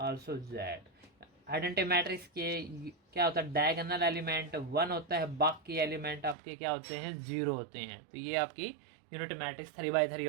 z। Identity matrix के क्या होता है, डायगोनल एलिमेंट 1 होता है, बाकी एलिमेंट आपके क्या होते हैं, 0 होते हैं। तो ये आपकी यूनिट मैट्रिक्स 3x3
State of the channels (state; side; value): drops out; left; at 6.4 s